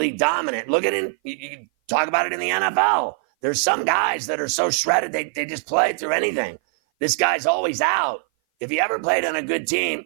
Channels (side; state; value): left; silent; 58 dB below the other